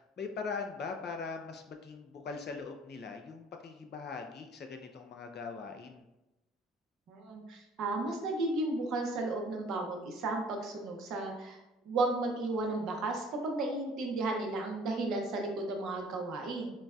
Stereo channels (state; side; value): normal; both; correlation 0.53